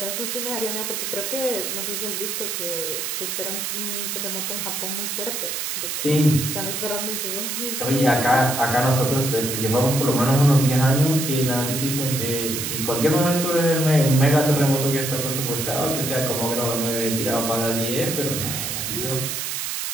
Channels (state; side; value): noise; right; hiss, 3 dB below the sound